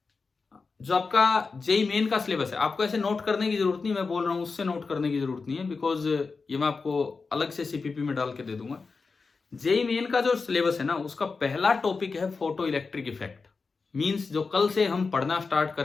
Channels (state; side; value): quieter; right; 4.5 dB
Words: जो आपका जेई मेन का सिलेबस है, आपको ऐसे नोट करने की जरूरत नहीं, मैं बोल रहा हूं उससे नोट करने की जरूरत नहीं है, बिकॉज ये मैं आपको अलग से सीपीपी में डाल के दे दूंगा। जेई मेन का जो सिलेबस है ना, उसका पहला टॉपिक है फोटो इलेक्ट्रिक इफेक्ट। मींस जो कल से हम पढ़ना स्टार्ट